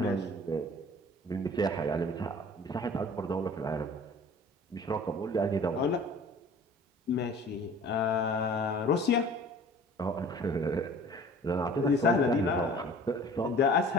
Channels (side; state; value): both; normal; correlation 0.46